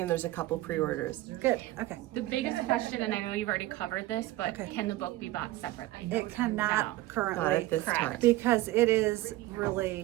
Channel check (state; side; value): quieter; left; 17.0 dB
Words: and there's a couple pre-orders. Good, okay. The biggest question, and I know you've already covered this, but Okay. can the book be bought separately? It cannot No. currently. Not at this Correct. time. Because it is